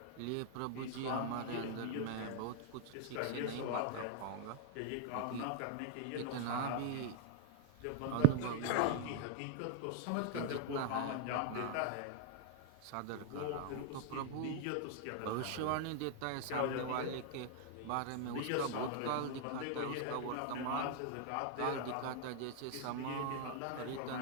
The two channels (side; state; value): both; different; correlation 0.00